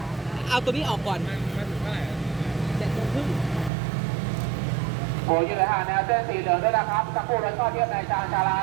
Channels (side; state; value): left; drops out; at 3.7 s